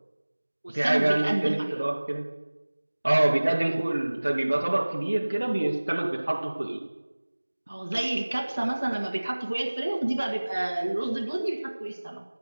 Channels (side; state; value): both; inverted; correlation -1.00